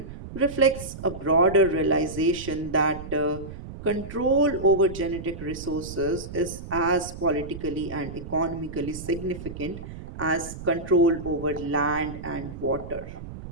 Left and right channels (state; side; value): noise; right; rumble, 11 dB below the sound